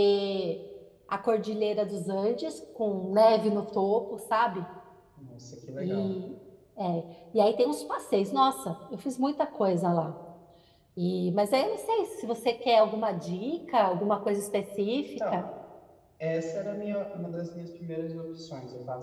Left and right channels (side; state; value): both; identical; correlation 1.00